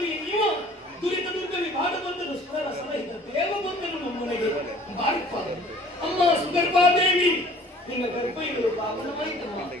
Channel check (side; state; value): both; normal; correlation 0.51